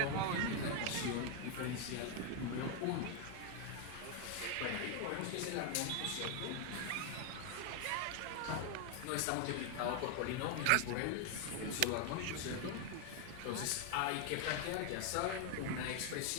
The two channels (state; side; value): different; both; correlation 0.01